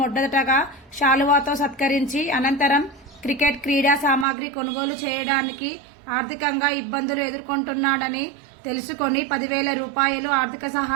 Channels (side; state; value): left; drops out; at 4.2 s